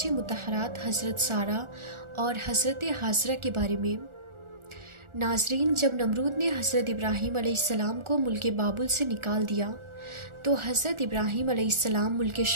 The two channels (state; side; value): late; left; 1.4 ms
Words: مطہرات حضرت سارہ اور حضرت حاجرہ کے بارے میں۔ ناظرین، جب نمرود نے حضرت ابراہیم علیہ السلام کو ملک بابل سے نکال دیا تو حضرت ابراہیم علیہ السلام ملک